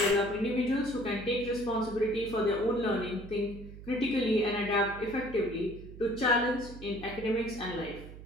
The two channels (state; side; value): noise; right; hum, 14 dB below the sound